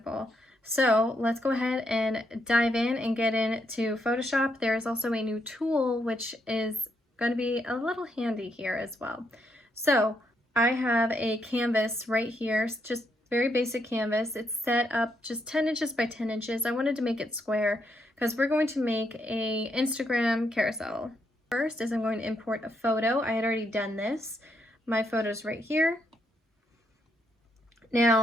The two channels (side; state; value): both; normal; correlation 0.77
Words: So let's go ahead and dive in and get into Photoshop. There is also a new tool which is going to be a little handy here as well. So I have a canvas right here, just very basic canvas. It's set up just 10 inches by 10 inches. I wanted to make it square because we're going to make a Instagram carousel. First is I'm going to import a photo. I had already done this. My photo's right here.